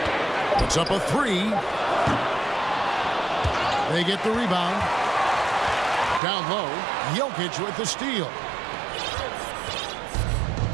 Puts up a 3. They get the rebound. Down low, Jokic with the steal.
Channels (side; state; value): left; drops out; at 6.2 s